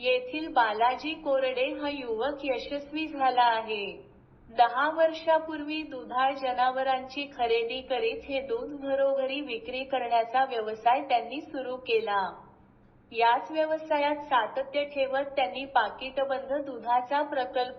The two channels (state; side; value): identical; both; correlation 1.00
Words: बालाजी कोरडे हा युवक यशस्वी झाला आहे. 10 वर्षापूर्वी दुधाळ जनावरांची खरेदी करीत हे दूध घरोघरी विक्री करण्याचा व्यवसाय त्यांनी सुरू केला. याच व्यवसायात सातत्य ठेवत त्यांनी पाकिटबंद दुधाचा